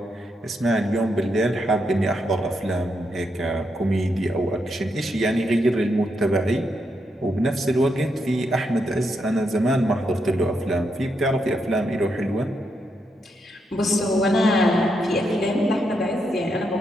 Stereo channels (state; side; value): normal; both; correlation 0.81